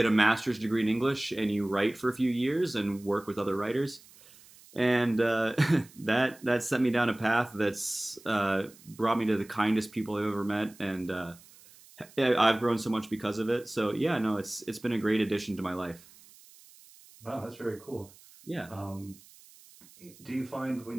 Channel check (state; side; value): noise; right; hiss, 24 dB below the sound